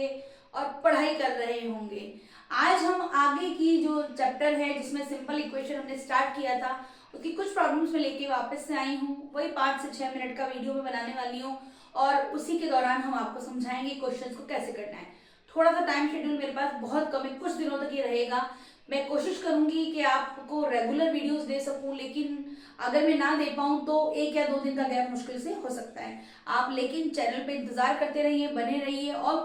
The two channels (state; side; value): identical; both; correlation 1.00